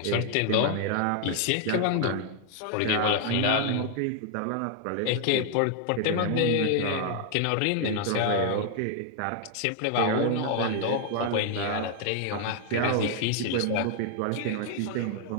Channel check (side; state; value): both; different; correlation 0.00